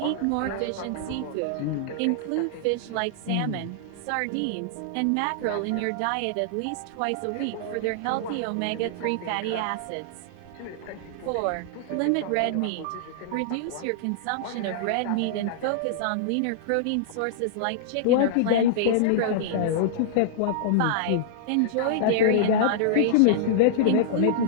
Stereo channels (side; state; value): both; different; correlation -0.02